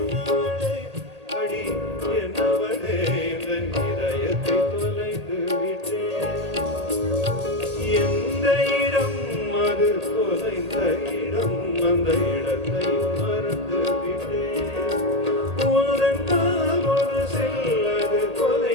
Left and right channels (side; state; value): left; late; 1.8 ms